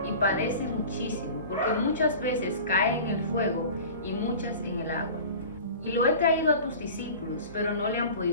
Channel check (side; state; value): both; inverted; correlation -0.39